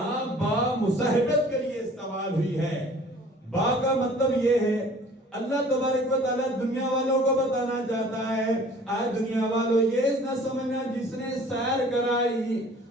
با مصاحبت کے لیے استعمال ہوئی ہے۔ با کا مطلب یہ ہے اللہ تبارک و تعالیٰ دنیا والوں کو بتانا چاہتا ہے، آئے دنیا والوں یہ نہ سمجھنا جس نے سیر کرائی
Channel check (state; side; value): normal; both; correlation 0.50